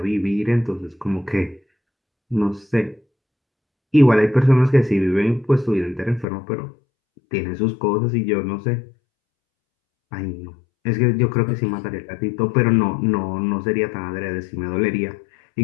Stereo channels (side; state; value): right; drops out; at 6.2 s